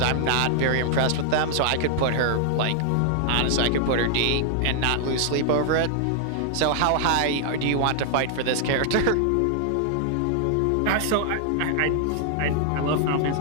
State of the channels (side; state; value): both; different; correlation 0.00